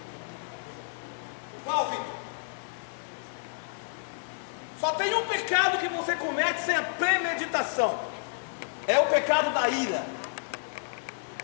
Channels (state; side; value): silent; right; digital silence